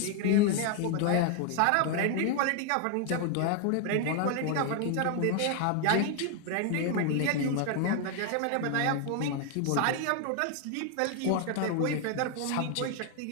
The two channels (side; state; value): both; different; correlation 0.00